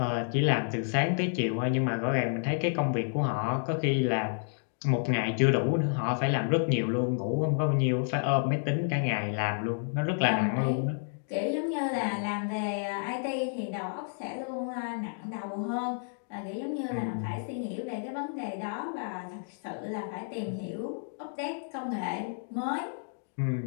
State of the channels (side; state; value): right; silent; digital silence